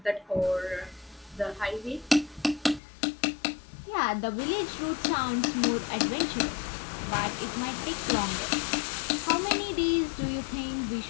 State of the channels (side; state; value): right; drops out; at 2.8 s